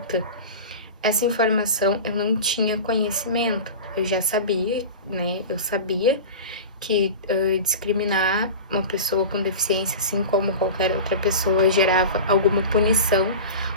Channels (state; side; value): inverted; both; correlation -0.31